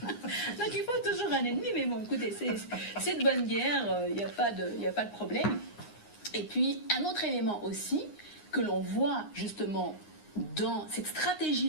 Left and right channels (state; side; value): late; right; 9.7 ms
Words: Donc il faut toujours un ennemi, mais bon, écoutez, c'est de bonne guerre, il n'y a pas de problème. Et puis, un autre élément aussi, que l'on voit justement dans cette